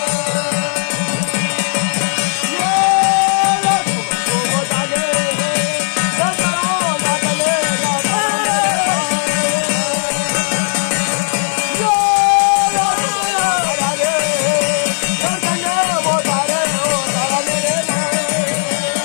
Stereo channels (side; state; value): right; silent; digital silence